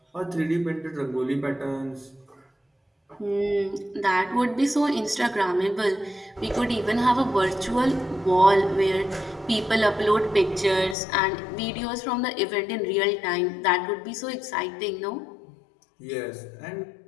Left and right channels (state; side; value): drops out; right; at 11.0 s